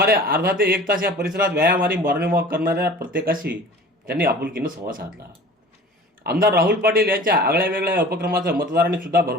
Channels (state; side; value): normal; both; correlation 0.42